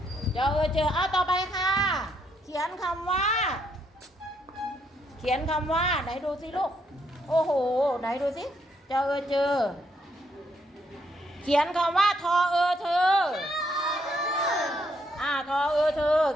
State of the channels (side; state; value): both; normal; correlation 0.74